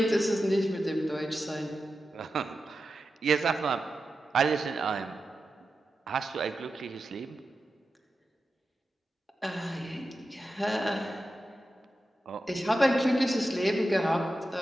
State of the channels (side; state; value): both; normal; correlation 0.91